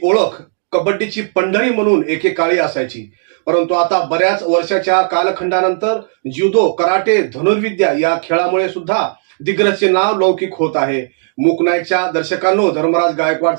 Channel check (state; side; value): silent; left; digital silence